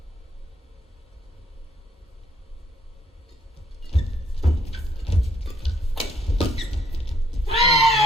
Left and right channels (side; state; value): both; normal; correlation 0.67